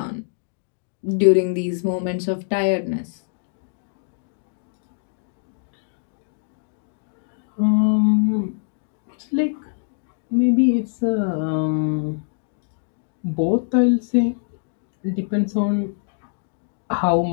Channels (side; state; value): right; silent; digital silence